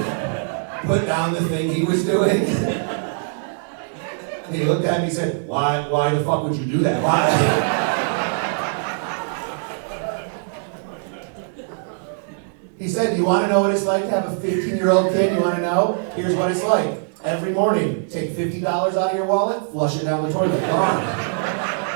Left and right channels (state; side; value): silent; left; digital silence